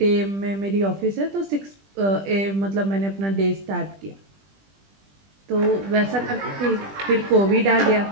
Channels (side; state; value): left; late; 20 ms